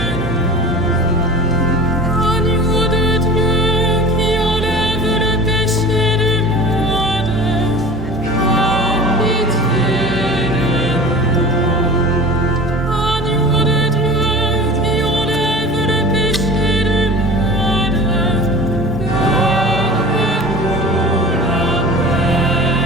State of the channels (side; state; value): both; normal; correlation 0.37